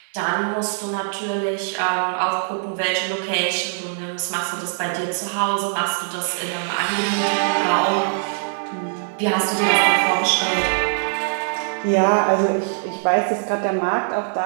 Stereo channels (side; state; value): left; silent; 62 dB below the other